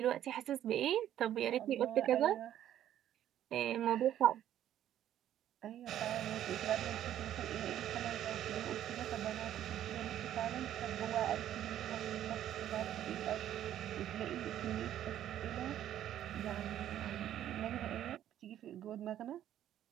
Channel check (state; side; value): quieter; left; 11.5 dB